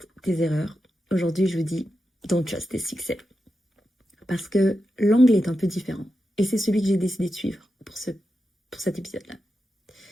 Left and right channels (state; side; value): normal; both; correlation 0.89